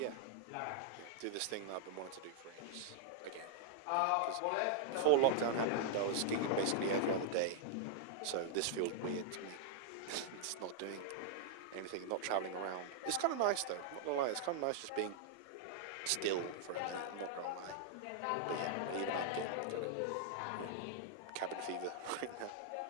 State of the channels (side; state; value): both; different; correlation -0.01